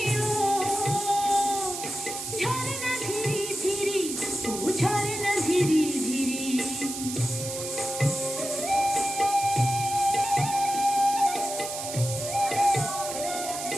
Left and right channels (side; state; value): right; noise; hiss, 7 dB below the sound